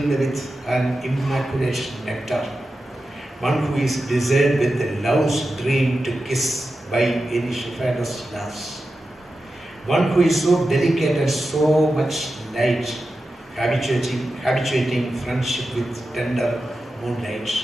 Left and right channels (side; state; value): both; normal; correlation 0.92